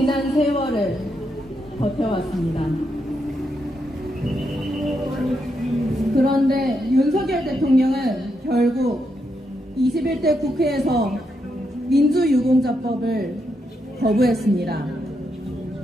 세월을 버텨왔습니다. 그런데 윤석열 대통령은 결국 21대 국회에서 민주유공자법을 거부했습니다.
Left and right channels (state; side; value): normal; both; correlation 0.81